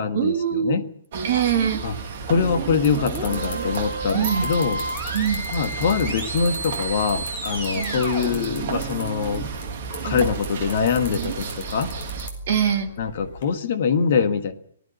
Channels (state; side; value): inverted; both; correlation -0.52